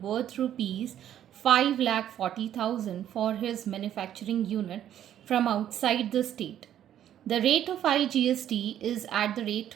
worth rupees 5,40,000 for his manufacturing unit from outside the state. The rate of IGST is at the rate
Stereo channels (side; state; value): left; quieter; 10.9 dB